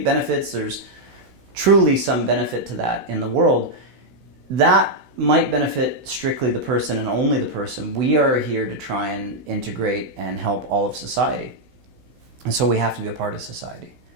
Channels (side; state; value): left; late; 16 ms